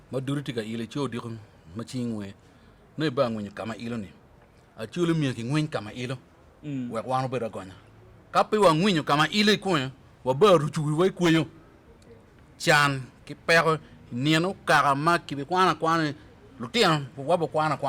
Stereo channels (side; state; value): both; identical; correlation 1.00